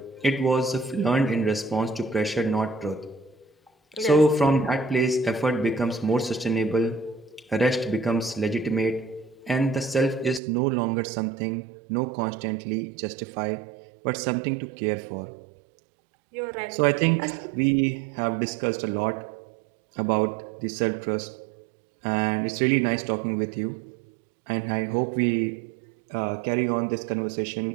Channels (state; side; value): drops out; left; at 10.4 s